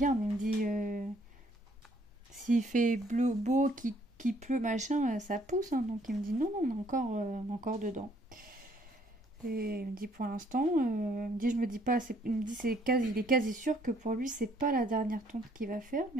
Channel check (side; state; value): both; normal; correlation 0.64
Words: il me dit, s'il fait bleu, beau, qui pleut, machin, ça pousse. Hein. Donc il me dit, non, non, on est encore dedans. Et il me dit, pour l'instant, il me dit, je me dis pas, il me dit, il est quasi sûr que pour lui, c'est pas la dernière tonte qu'il va faire,